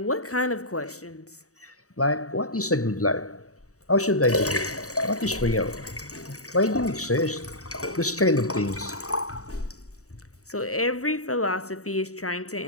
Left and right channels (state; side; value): late; right; 0.65 ms